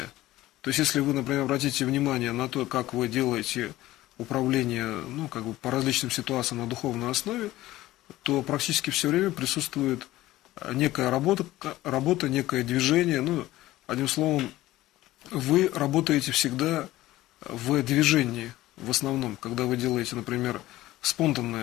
То есть, если вы, например, обратите внимание на то, как вы делаете управление, ну, как бы по различным ситуациям на духовной основе, то практически все время присутствует некая работа, некое движение. Ну, одним словом, вы работаете всегда в движении, в основном, когда вы делаете, например,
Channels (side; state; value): right; quieter; 16.3 dB